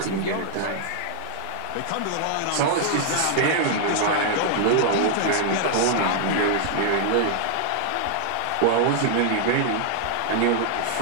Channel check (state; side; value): different; both; correlation -0.01